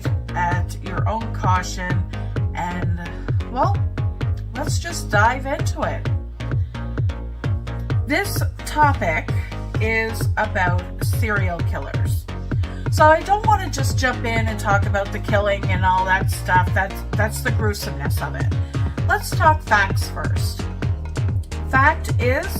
at your own caution, and, well, let's just dive into it. This topic is about serial killers. So I don't want to just jump in and talk about the killing and all that stuff. That's the gruesomeness of it. Let's talk facts first. Fact is,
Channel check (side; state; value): both; identical; correlation 1.00